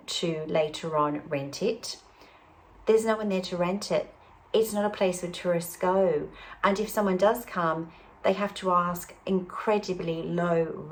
to later on rent it, there's no one there to rent it. It's not a place where tourists go. And if someone does come, they have to ask incredibly low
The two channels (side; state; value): both; identical; correlation 1.00